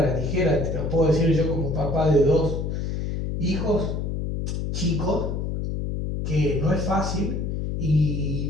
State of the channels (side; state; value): left; noise; hum, 2 dB below the sound